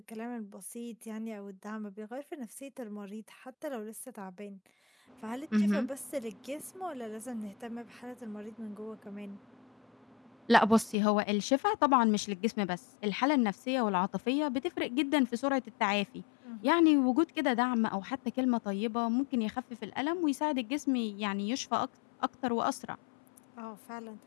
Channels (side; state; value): right; drops out; at 11.0 s